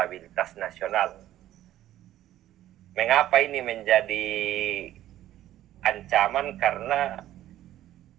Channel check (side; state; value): left; quieter; 13.3 dB